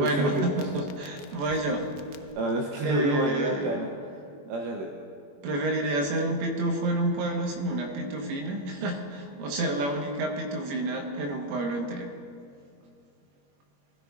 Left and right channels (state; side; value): late; left; 21 ms